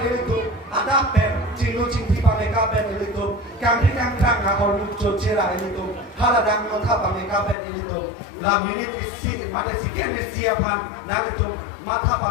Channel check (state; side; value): drops out; right; at 7.6 s